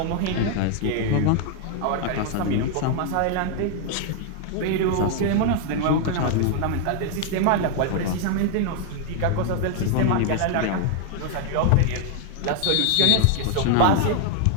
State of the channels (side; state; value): both; different; correlation 0.00